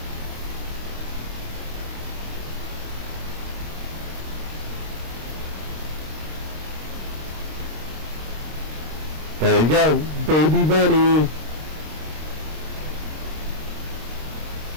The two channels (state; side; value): late; left; 26 ms